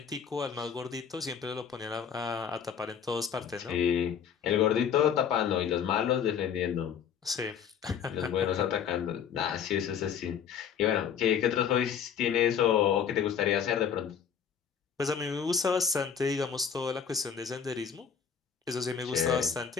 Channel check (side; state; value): right; quieter; 7.6 dB